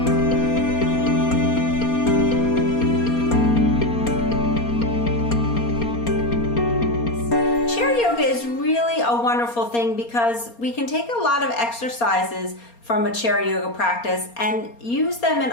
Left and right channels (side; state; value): right; late; 4.3 ms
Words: Chair yoga is really a wonderful thing because we can take a lot of exercises from a chair yoga practice and use them in